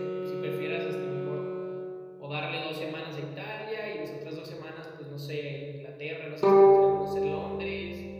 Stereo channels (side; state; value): both; identical; correlation 1.00